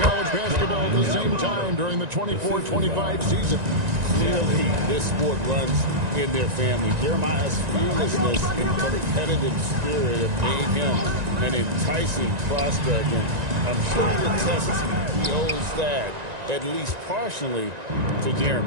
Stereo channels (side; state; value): left; late; 1.9 ms